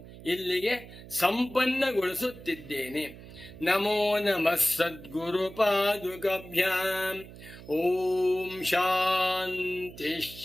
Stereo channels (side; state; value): right; noise; hum, 16 dB below the sound